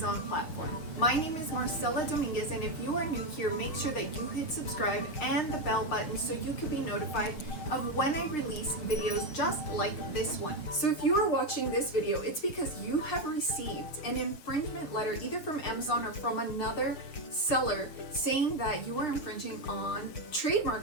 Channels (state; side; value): late; right; 6.5 ms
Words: platform. My name is Marcella Dominguez, and if you are new here, make sure that you hit subscribe and the bell button so you can be notified of when I release videos just like this one. So if you are watching this video, it's because you have received an infringement letter either from Amazon or from another seller saying that you are infringing on